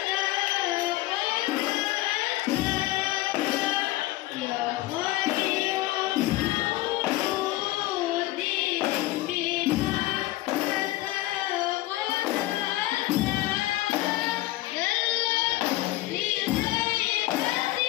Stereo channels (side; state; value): right; quieter; 17.8 dB